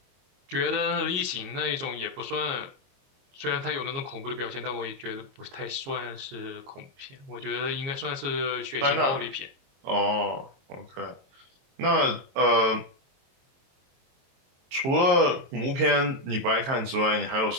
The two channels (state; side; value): late; left; 23 ms